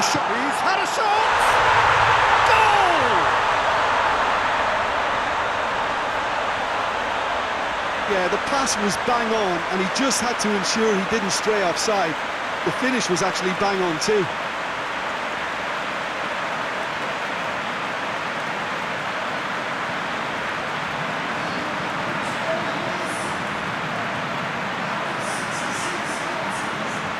shot. He's had a shot! Goal! Yeah, the pass was bang on, and he just had to ensure he didn't stray offside. The finish was actually bang on too.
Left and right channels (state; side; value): identical; both; correlation 1.00